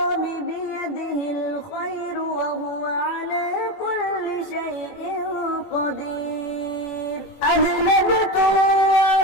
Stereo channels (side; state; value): right; late; 21 ms